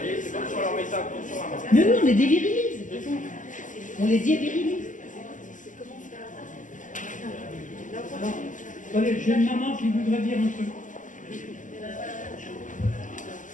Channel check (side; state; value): right; late; 0.37 ms